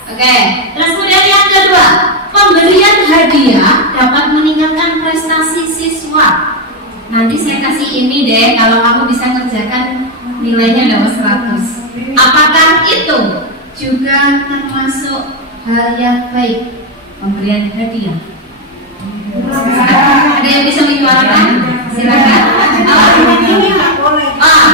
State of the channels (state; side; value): normal; both; correlation 0.05